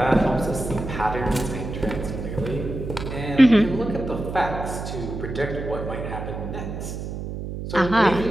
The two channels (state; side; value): noise; right; hum, 7 dB below the sound